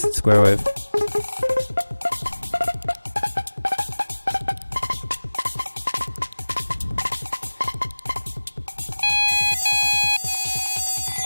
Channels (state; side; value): inverted; both; correlation -1.00